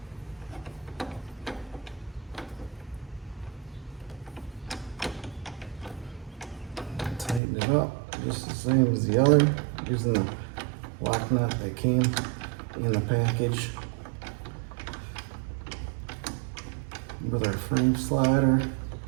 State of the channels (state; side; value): drops out; left; at 7.4 s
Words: Tighten it up just the same as the other, using the lock nut that came in the package with our frame slider.